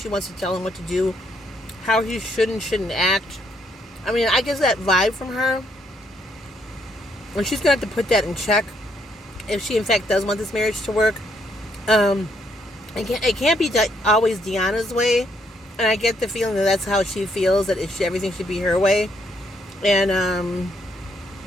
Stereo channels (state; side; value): normal; both; correlation 0.72